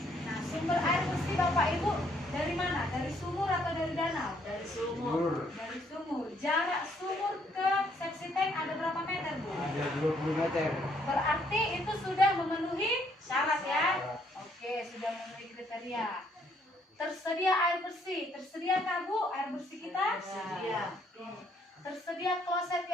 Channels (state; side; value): normal; both; correlation 0.68